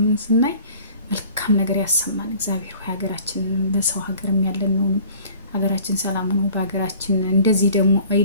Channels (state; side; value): inverted; both; correlation -0.50